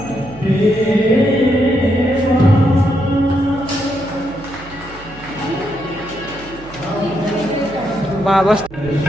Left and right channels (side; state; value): right; noise; hum, 18 dB below the sound